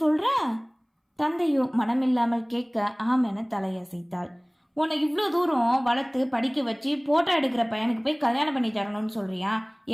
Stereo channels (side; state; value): both; identical; correlation 1.00